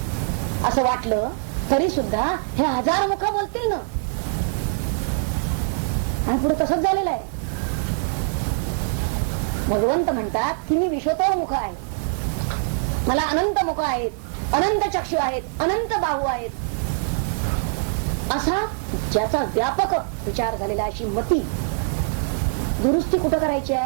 असं वाटलं तरी सुद्धा हे हजार मुख बोलतील ना. आणि पुढे तसंच झालेलं आहे. भगवंत म्हणतात की मी विश्वतोमुख आहे, मला अनंत मुख आहेत, अनंत चक्षु आहेत, अनंत बाहू आहेत, असा ज्याचा व्यापक विचार झालेला, अशी मती दुरुस्ती कुठं करायची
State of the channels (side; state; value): left; silent; digital silence